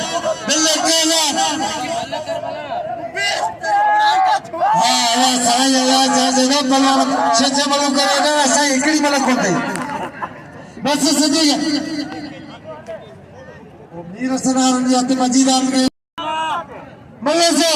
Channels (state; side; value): identical; both; correlation 1.00